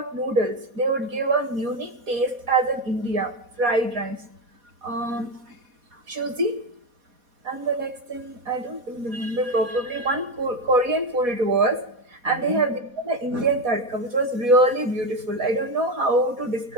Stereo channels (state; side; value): late; left; 4.2 ms